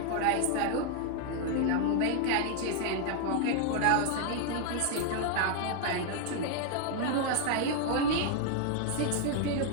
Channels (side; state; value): both; different; correlation 0.00